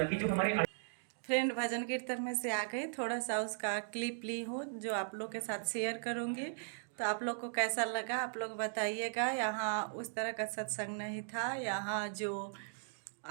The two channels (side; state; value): left; silent; digital silence